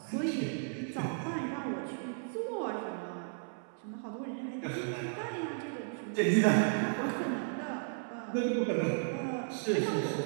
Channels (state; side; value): silent; left; 55 dB below the other